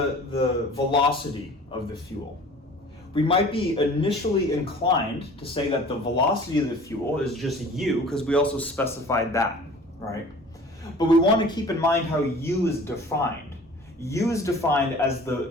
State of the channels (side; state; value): both; normal; correlation 0.46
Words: velocity of the fuel? We might be initially inclined to say that the velocity of the fuel is just u, because we also specified that, right? But we want to keep in mind how u is defined. U is defined as